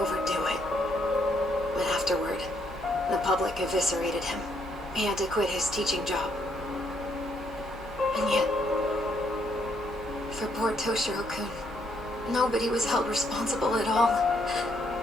it. But afterward, the public eviscerated him. He had to quit his teaching job. And yet, for poor Toshiro-kun, nobody was held responsible at all.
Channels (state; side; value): normal; both; correlation 0.73